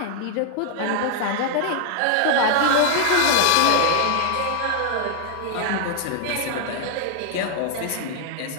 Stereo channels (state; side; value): different; both; correlation 0.00